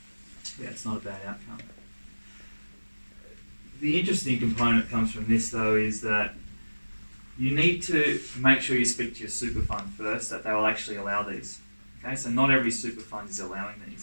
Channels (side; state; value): both; inverted; correlation -1.00